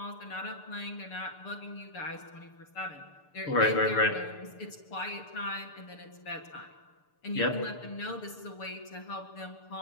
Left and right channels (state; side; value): late; right; 6.8 ms